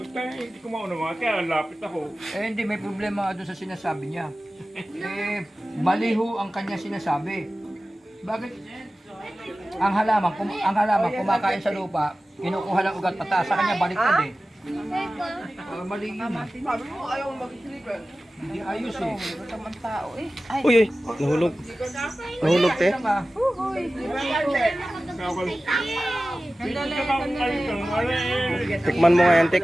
Kaya hindi ko maunawa, kaya lapit ako. Eh hindi, may problema doon sa sinasabi niya. Eh, maliho ang kanya sinasabi. Bakit? Ang halaman kumakain sa lupa, kinukuha lang ugat pataas. Sa kanya baliktad eh. Mali yun. Sabi mo, ayaw mag-sleeper. Hindi ayos eh. Tamang tao eh. Ay, Uy, uy, nahulog. Nahulog, te. Lang, ah. Tikman mo nga yan, te,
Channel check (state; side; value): normal; both; correlation 0.96